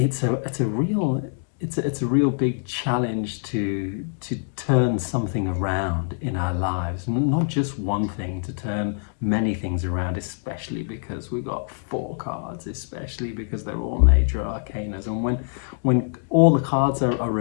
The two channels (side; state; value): right; silent; digital silence